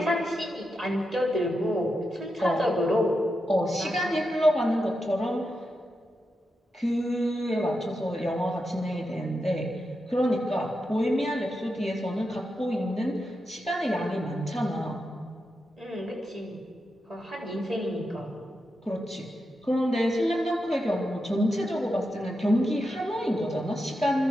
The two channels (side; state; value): both; normal; correlation 0.87